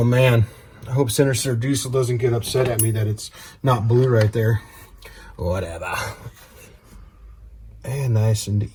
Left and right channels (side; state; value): both; identical; correlation 1.00